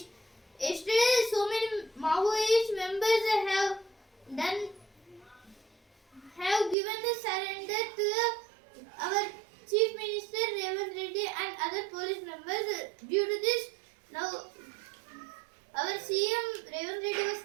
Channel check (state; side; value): drops out; left; at 6.8 s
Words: Yesterday, so many Maoist members have given the surrender to our Chief Minister Revanth Reddy and other police members. Due to this, now our CM Revanth Reddy was